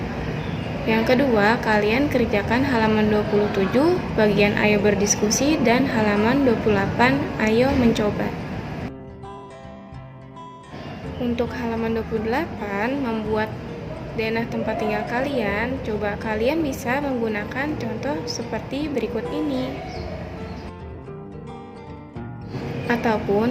Yang kedua, kalian kerjakan halaman 27, bagian ayo berdiskusi, dan halaman 28, ayo mencoba. Untuk halaman 28, membuat denah tempat tinggal kalian, coba kalian bisa menggunakan contoh seperti berikut ini.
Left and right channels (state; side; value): identical; both; correlation 1.00